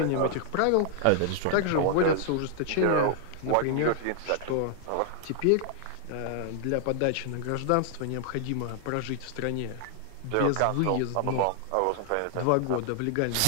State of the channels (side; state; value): both; different; correlation 0.00